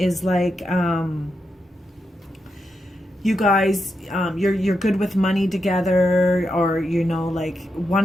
like, you guys, you're good with money together, or, you know, like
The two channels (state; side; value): normal; both; correlation 0.85